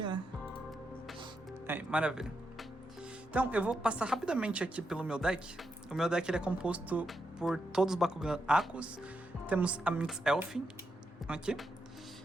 né? Maravilha. Então, eu vou passar rapidamente aqui pelo meu deck. O meu deck ele é composto por todos os Bakugan Akos. Temos a Minx Elfin aqui.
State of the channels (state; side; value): normal; both; correlation 0.84